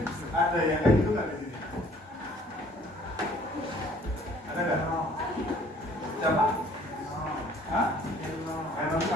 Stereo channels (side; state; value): both; normal; correlation 0.56